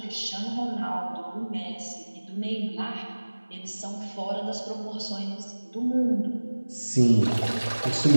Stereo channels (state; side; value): inverted; both; correlation -1.00